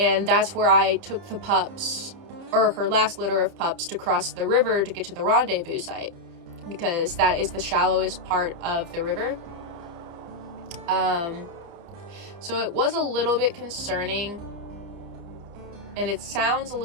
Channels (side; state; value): left; late; 30 ms